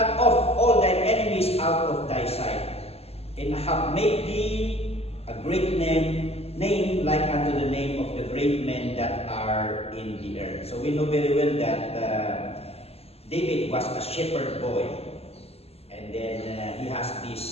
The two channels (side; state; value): right; late; 0.29 ms